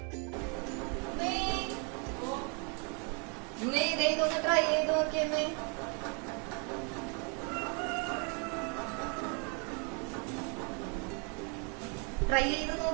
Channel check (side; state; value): left; quieter; 36.1 dB